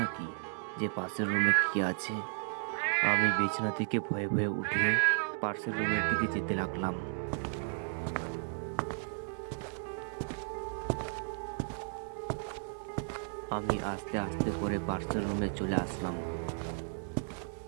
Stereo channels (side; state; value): left; silent; digital silence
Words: নাকি যে পাশের রুমে কি আছে। আমি বিছানা থেকে ভয়ে ভয়ে উঠে পাশের রুমের দিকে যেতে লাগলাম। আমি আস্তে আস্তে করে পাশের রুমে চলে আসলাম।